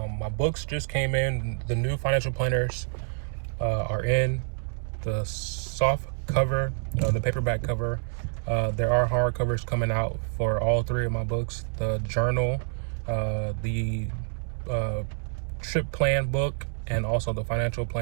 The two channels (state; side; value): silent; left; 57 dB below the other